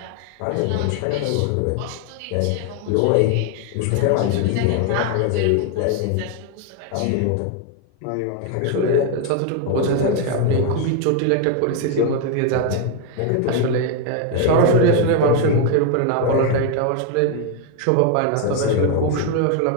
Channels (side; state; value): both; different; correlation 0.01